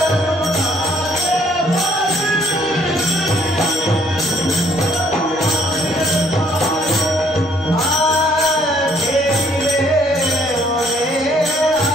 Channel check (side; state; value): both; normal; correlation 0.64